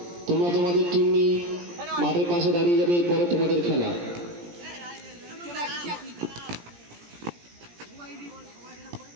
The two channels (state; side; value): late; left; 17 ms